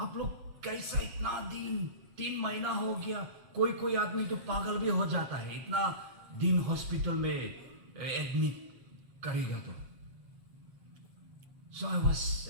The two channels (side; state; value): left; late; 8.0 ms